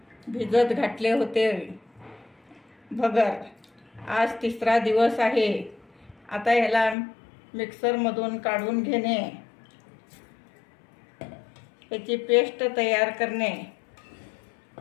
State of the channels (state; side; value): drops out; right; at 7.0 s